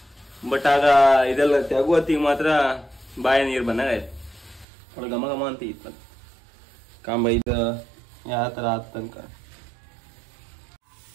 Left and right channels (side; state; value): left; drops out; at 4.7 s